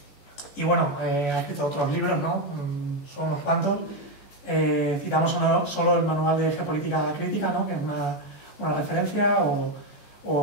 Y bueno, ha escrito otros libros, ¿no? Son unos cuantos. Citamos solo el Manual de Geopolítica Crítica, ¿no? Que es una referencia,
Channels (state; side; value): late; right; 14 ms